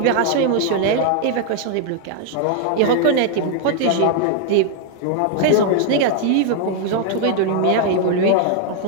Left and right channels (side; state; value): both; different; correlation 0.00